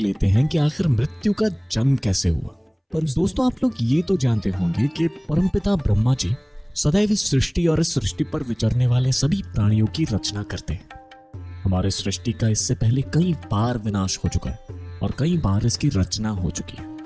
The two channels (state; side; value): identical; both; correlation 1.00